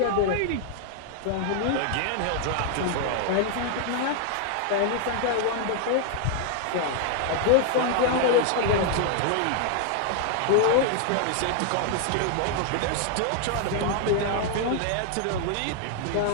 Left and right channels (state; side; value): different; both; correlation 0.00